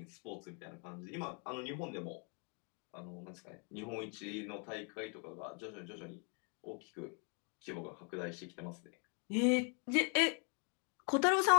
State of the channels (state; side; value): quieter; right; 38.9 dB